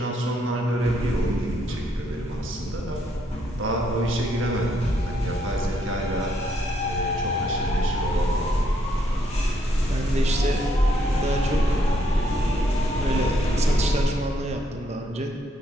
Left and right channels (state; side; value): normal; both; correlation 0.73